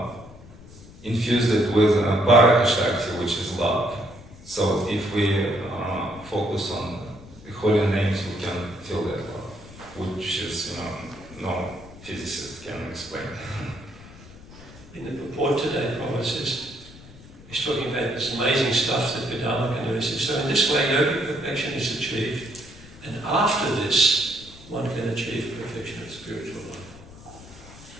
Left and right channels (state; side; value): noise; left; rumble, 19 dB below the sound